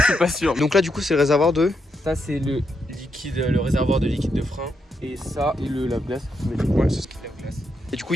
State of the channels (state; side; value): normal; both; correlation 0.81